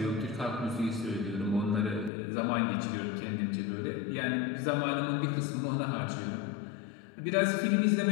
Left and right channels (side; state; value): right; drops out; at 2.1 s